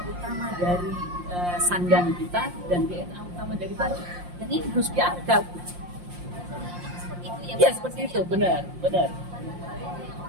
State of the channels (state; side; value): late; left; 5.7 ms